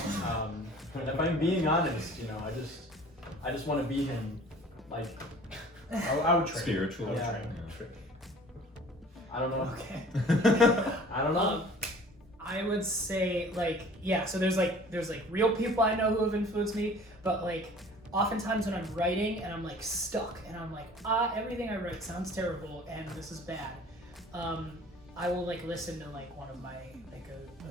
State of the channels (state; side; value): normal; both; correlation 0.48